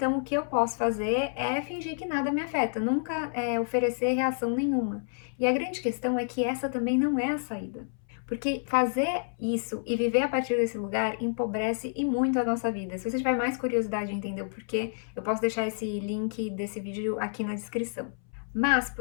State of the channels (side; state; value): right; silent; 59 dB below the other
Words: o que eu posso fazer é fingir que nada me afeta, nunca oferecer reação nenhuma. E a grande questão é que essa também não é a saída. Porque fazer isso e viver a partir desse lugar empobrece e muito a nossa vida. Se você tiver mais curiosidade em entender o porquê, eu posso deixar esse link desse vídeo aqui na descrição. Mas,